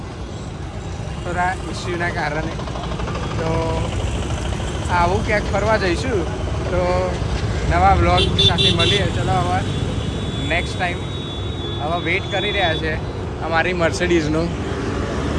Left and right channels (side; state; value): both; identical; correlation 1.00